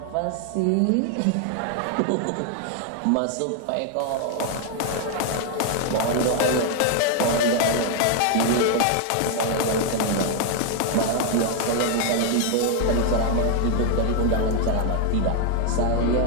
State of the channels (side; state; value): both; different; correlation 0.00